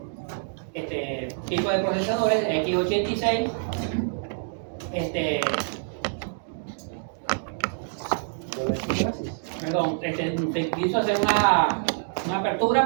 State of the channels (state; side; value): silent; left; digital silence